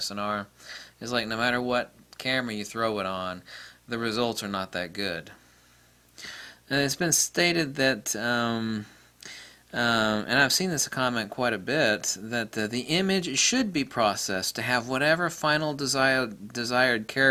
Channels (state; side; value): identical; both; correlation 1.00